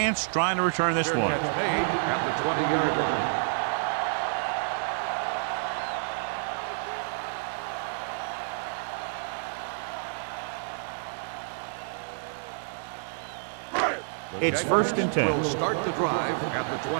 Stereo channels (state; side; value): silent; left; digital silence